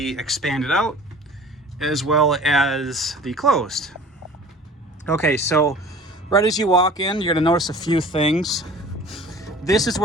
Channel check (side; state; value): both; normal; correlation 0.45